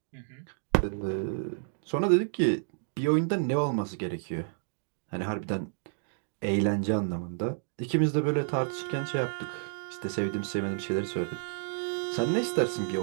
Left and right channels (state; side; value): silent; left; digital silence